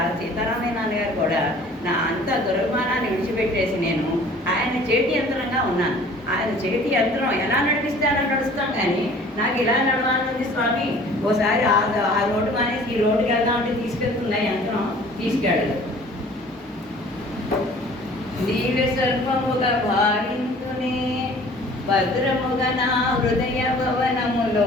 సీతారామయ్య నాన్నగారు కూడా నా అంత దురభిమానాన్ని విడిచిపెట్టేసి నేను ఆయన చేతి యంత్రంగా ఉన్నాను. ఆయన చేతి యంత్రం ఎలా నడిపిస్తే అలా నడుస్తాం, కానీ నాకు ఇలా నడవాలనుంది స్వామి, ఓసారి ఆ రోడ్డు మానేసి ఈ రోడ్డుకి వెళ్దామంటే తీసుకెళ్తున్నా యంత్రం, తీసుకెళ్ళదు. నీవే సర్వముగా భావించునే భద్రముగా నా హృదయ భవనములో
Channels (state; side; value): normal; both; correlation 0.50